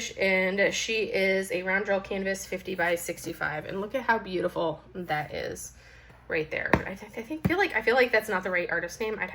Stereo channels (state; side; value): identical; both; correlation 1.00